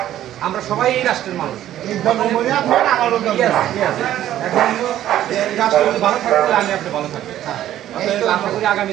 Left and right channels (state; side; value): quieter; left; 12.4 dB